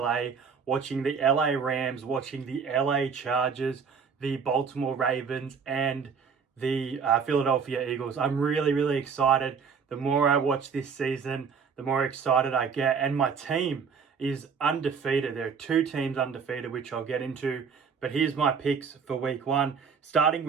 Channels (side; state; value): left; quieter; 6.0 dB